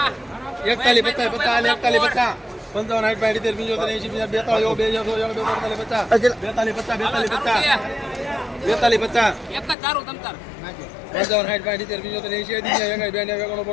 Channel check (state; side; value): drops out; right; at 9.8 s